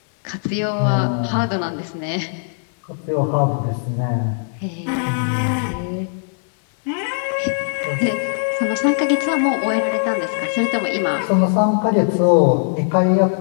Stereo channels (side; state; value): right; silent; digital silence